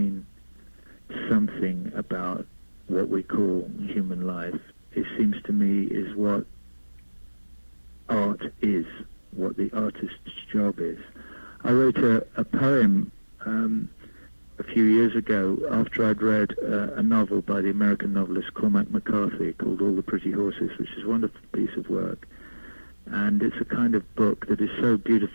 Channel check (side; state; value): both; inverted; correlation -1.00